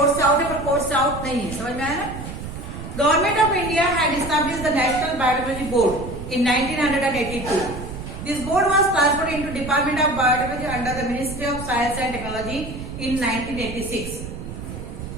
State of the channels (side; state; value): right; noise; rumble, 9 dB below the sound